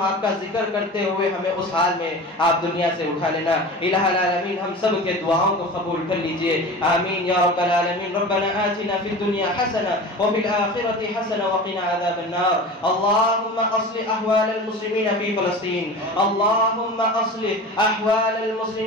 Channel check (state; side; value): normal; both; correlation 0.34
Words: آپ کا ذکر کرتے ہوئے ہمیں اس حال میں آپ دنیا سے اٹھا لینا۔ الہ العالمین ہم سب کے دعاؤں کو قبول کر لیجئے، آمین یا رب العالمین۔ ربنا آتنا فی الدنیا حسنہ وفی الآخرۃ حسنہ وقنا عذاب النار۔ اللهم اصلح احوال المسلمین فی فلسطین، اللهم اصلح احوال